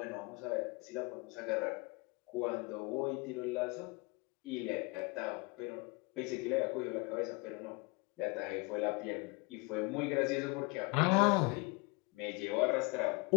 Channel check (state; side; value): quieter; right; 28.0 dB